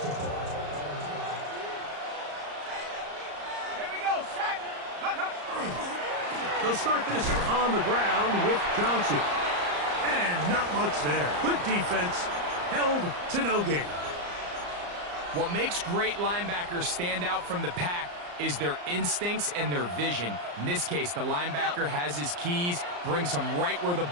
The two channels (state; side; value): late; left; 34 ms